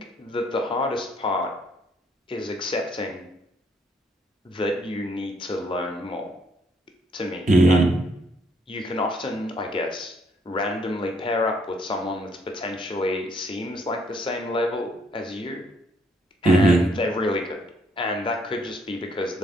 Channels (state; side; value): normal; both; correlation 0.69